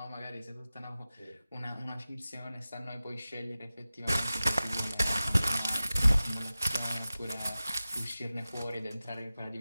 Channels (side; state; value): both; inverted; correlation -0.96